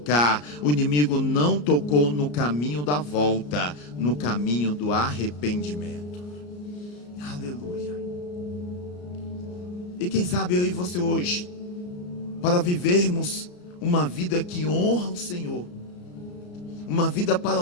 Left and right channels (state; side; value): late; right; 34 ms